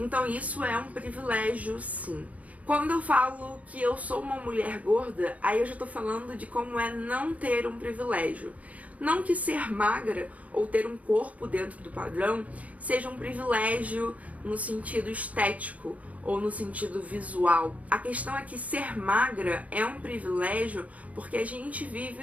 isso é um privilégio, sim. Quando eu falo que eu sou uma mulher gorda, aí eu já tô falando de como é não ter um privilégio. Não que ser magra ou ter um corpo dentro do padrão seja um privilégio no sentido estético ou no sentido visual. A questão é que ser magra é um privilégio porque a gente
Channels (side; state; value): left; late; 0.069 ms